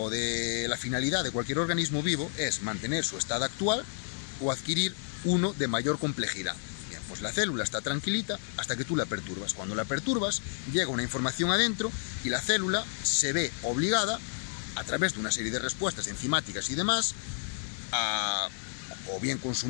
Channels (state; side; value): silent; right; digital silence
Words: de la finalidad de cualquier organismo vivo es mantener su estado actual o adquirir uno de mayor complejidad. Pues la célula está tranquilita hasta que tú la perturbas. Cuando la perturbas, llega una información adentro y la célula se ve obligada, a través de una serie de respuestas enzimáticas y demás, a o bien